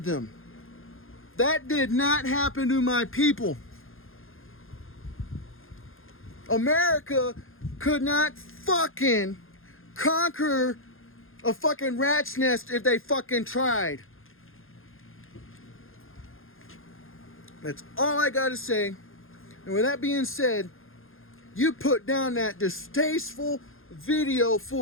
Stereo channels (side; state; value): right; late; 0.60 ms